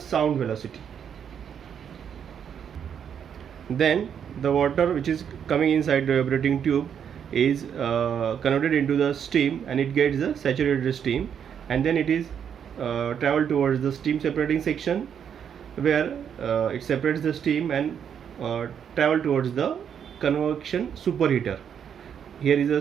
velocity. Then the water which is coming inside the evaporating tube is converted into the steam, and it gets the saturated steam, and then it is travel towards the steam separating section, where it separates the steam and travel towards the convection superheater. Here is a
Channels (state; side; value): quieter; left; 8.1 dB